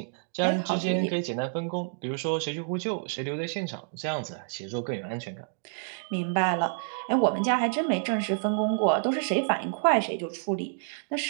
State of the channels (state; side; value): silent; left; digital silence